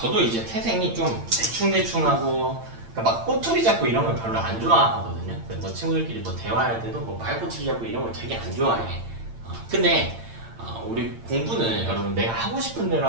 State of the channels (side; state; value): left; late; 8.8 ms